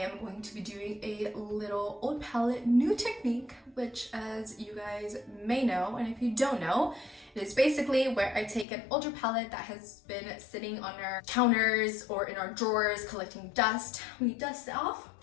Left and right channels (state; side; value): drops out; right; at 8.7 s